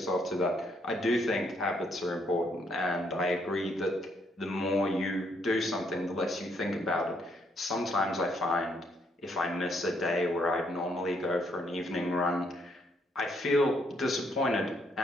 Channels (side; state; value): both; normal; correlation 0.72